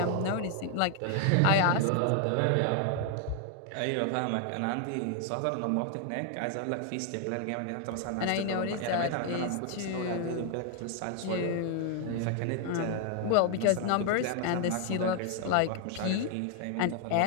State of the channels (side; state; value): both; different; correlation 0.00